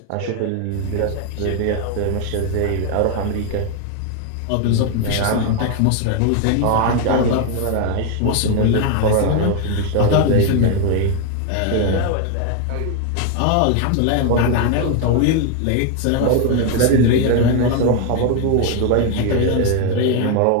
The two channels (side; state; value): both; different; correlation 0.01